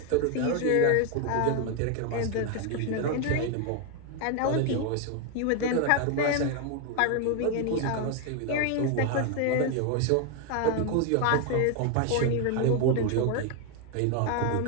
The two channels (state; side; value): different; both; correlation 0.01